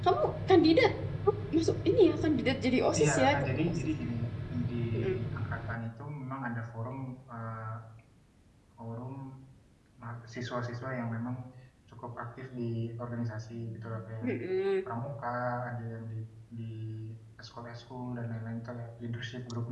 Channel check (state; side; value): identical; both; correlation 1.00